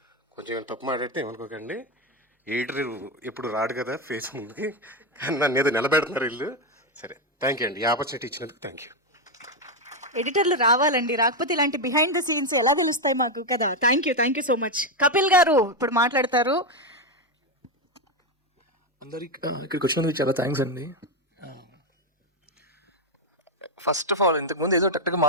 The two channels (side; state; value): both; normal; correlation 0.07